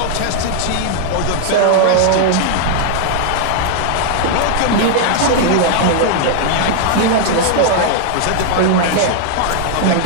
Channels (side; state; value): both; different; correlation 0.00